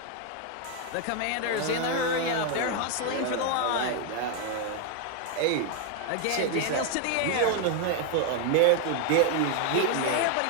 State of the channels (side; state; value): both; different; correlation 0.00